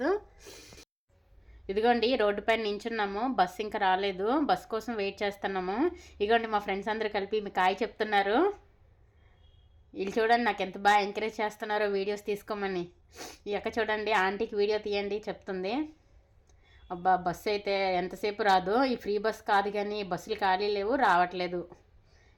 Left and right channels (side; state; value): both; identical; correlation 1.00